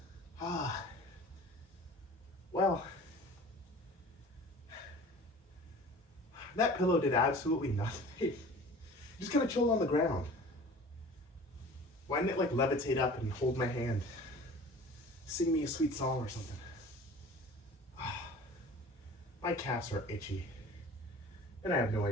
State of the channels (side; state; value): both; normal; correlation 0.43